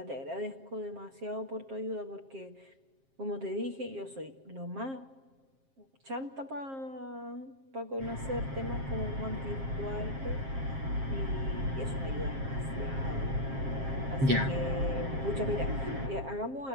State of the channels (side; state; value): left; late; 7.5 ms